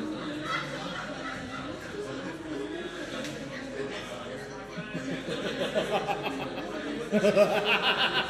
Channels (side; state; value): both; identical; correlation 1.00